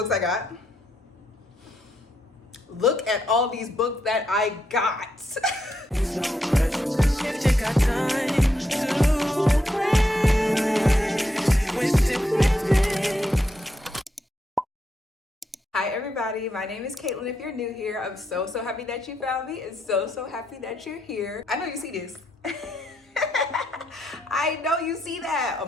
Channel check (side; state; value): both; normal; correlation 0.80